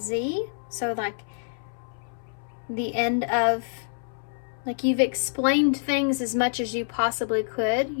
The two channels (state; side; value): silent; right; 60 dB below the other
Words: So like the end of, like you've explained things as much as you possibly could,